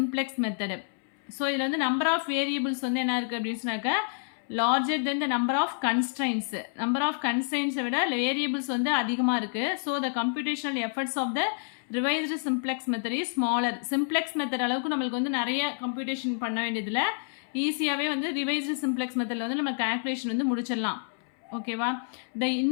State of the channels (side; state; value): right; silent; 59 dB below the other